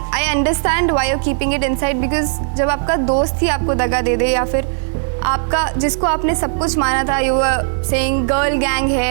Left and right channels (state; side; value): silent; left; 57 dB below the other